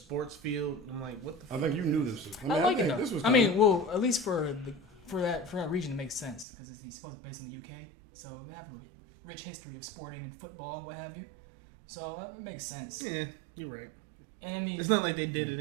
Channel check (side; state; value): left; drops out; at 6.5 s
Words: field. I'm like, what the? I think you knew this. I like it though. I mean, well, at least for that region, it makes sense because it's supposed to be based in the UK, so they have a rich history of sporting and football and what have you. So it makes sense. Yeah, you're right. And I mean, it's not like they did it